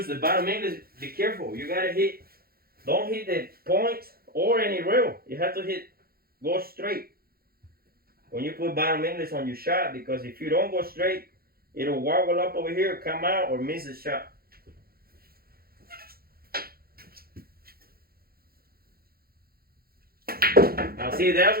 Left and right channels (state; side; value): late; left; 0.44 ms